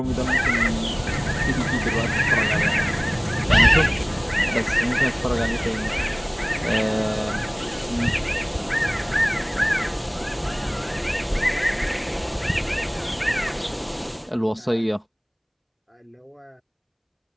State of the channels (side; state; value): both; identical; correlation 1.00